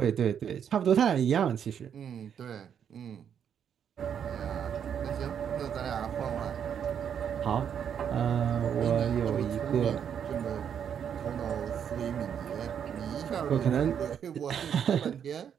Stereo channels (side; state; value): left; quieter; 8.3 dB